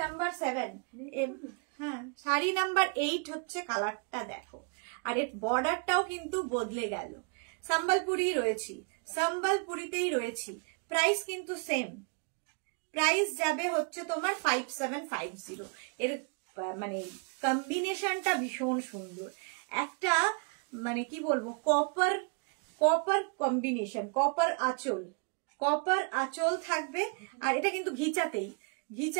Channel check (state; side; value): quieter; left; 36.1 dB